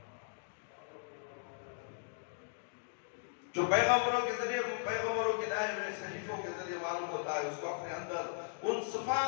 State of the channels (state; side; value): silent; right; 53 dB below the other